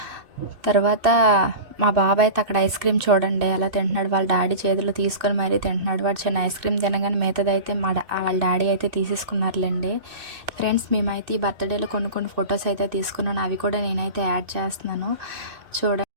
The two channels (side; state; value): left; late; 2.6 ms